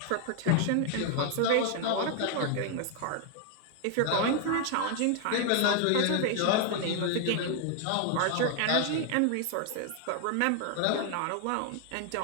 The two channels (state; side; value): different; both; correlation 0.00